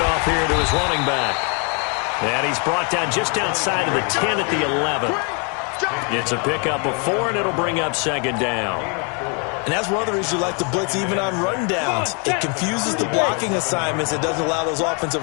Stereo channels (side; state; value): right; quieter; 36.5 dB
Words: here to his running back. And he's brought down just outside of the 10 at the 11. It's a pickup of 4, and it'll bring up 2nd down. And that's one of the reasons you like to blitz even on run downs. It confuses the blocking assignments. It doesn't allow those